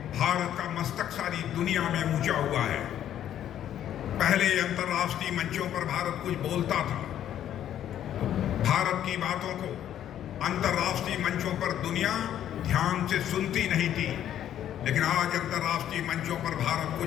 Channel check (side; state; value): right; quieter; 10.9 dB